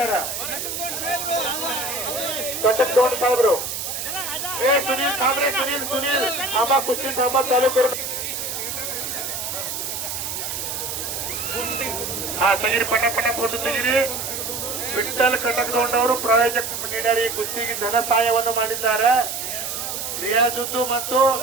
ಕಟಕ್ ತೋಟ ಸಾಹೇಬ್ರು. ಸುನೀಲ್ ಸಾಬ್ರೆ, ಸುನೀಲ್ ಅಮ್ಮ ಕುಸ್ತಿ ಸಾಂಬ ತಾಲೂಕು. ತೆಗಿರಿ, ಪಟ ಫೋಟೋ ತೆಗಿರಿ. ವಿಠಲ್ ಕಟಕ್ ತೋಟವರು ಪ್ರಾಯೋಜಕ ನೀಡ್ಯಾರ, ಈ ಕುಸ್ತಿಗೆ ಧನ ಸಹಾಯವನ್ನು ಮಾಡಿದ್ದಾರೆ. ರಿಯಾಜುದ್ದು ಮತ್ತು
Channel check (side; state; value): right; noise; hiss, 4 dB below the sound